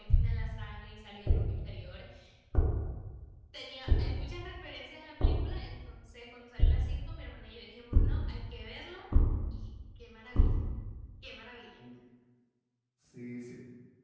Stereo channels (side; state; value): both; identical; correlation 1.00